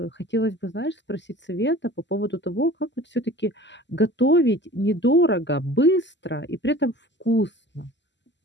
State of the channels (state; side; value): late; right; 0.52 ms